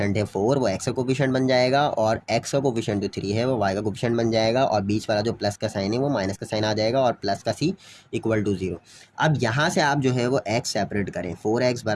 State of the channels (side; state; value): both; identical; correlation 1.00